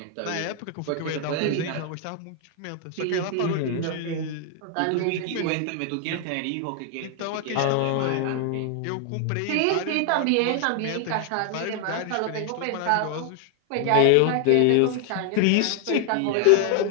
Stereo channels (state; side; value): different; both; correlation 0.00